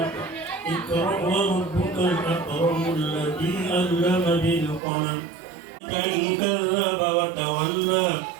اقرأ وربك الأكرم الذي علم بالقلم إن كذب وتولى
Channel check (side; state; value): left; drops out; at 4.8 s